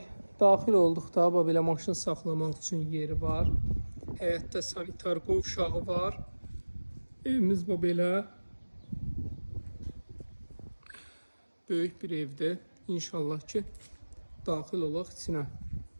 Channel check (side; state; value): both; inverted; correlation -1.00